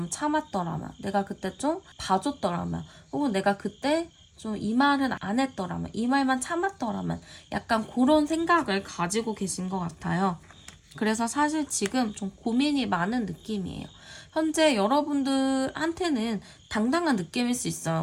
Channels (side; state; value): both; identical; correlation 1.00